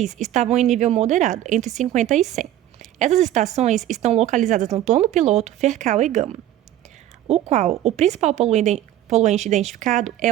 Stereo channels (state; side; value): quieter; left; 12.6 dB